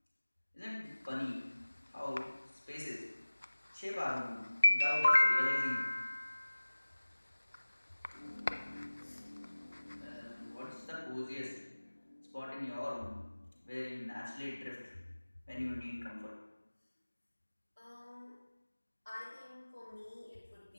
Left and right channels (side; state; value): both; inverted; correlation -1.00